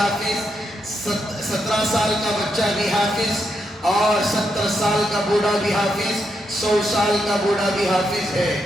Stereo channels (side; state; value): both; normal; correlation 0.81